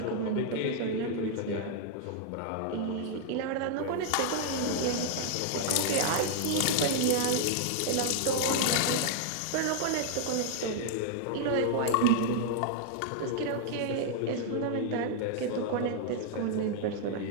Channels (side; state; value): both; different; correlation -0.01